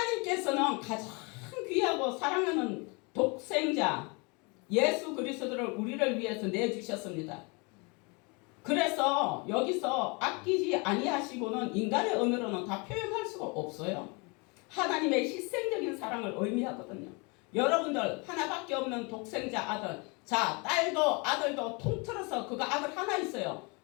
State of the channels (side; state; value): right; quieter; 30.1 dB